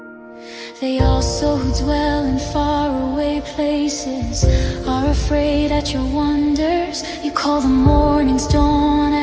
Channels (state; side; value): identical; both; correlation 1.00